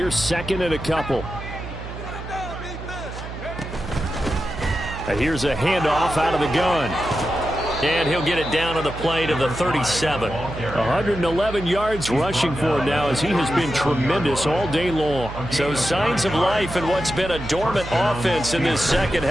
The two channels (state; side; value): noise; right; hum, 10 dB below the sound